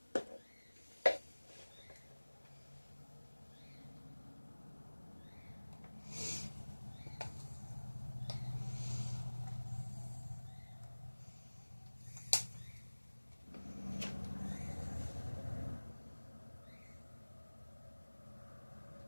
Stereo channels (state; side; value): inverted; both; correlation -1.00